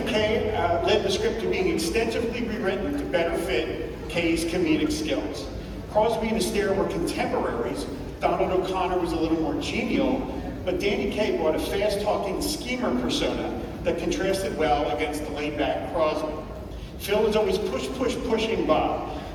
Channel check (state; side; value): identical; both; correlation 1.00